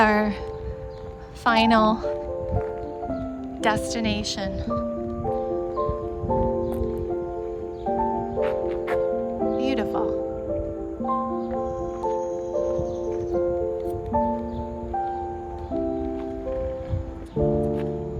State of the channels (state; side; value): identical; both; correlation 1.00